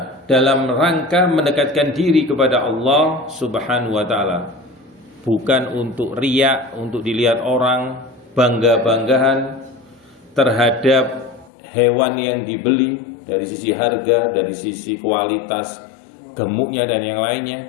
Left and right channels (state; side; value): drops out; right; at 11.5 s